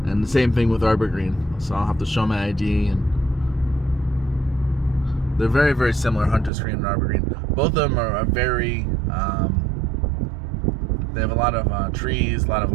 and the same thing with Arbor Green. So I'll have to show my ID, and they're very, very similar, Hunter's Green and Arbor Green. Both of them are very. They have a lot of trees, a lot of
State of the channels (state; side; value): drops out; left; at 6.5 s